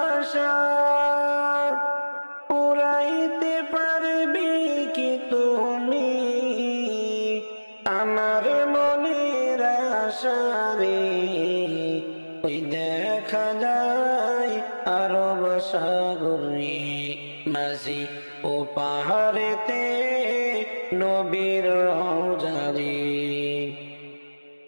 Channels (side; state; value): both; inverted; correlation -1.00